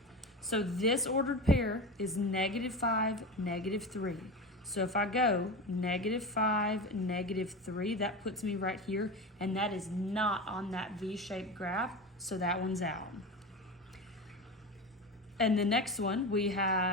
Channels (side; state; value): both; normal; correlation 0.25